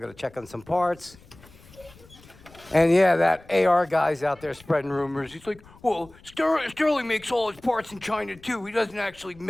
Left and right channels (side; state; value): left; noise; rumble, 24 dB below the sound